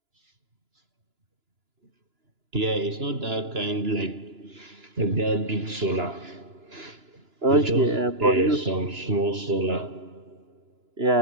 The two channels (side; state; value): left; late; 2.9 ms